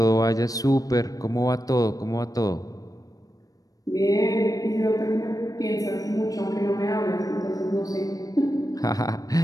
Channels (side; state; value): right; late; 0.18 ms